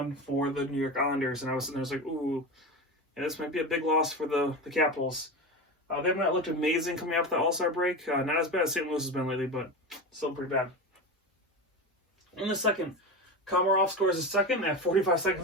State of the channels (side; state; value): both; normal; correlation 0.23